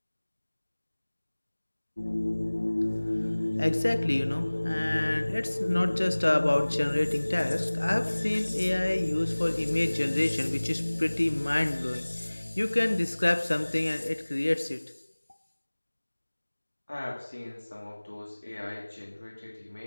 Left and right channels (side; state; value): both; inverted; correlation -1.00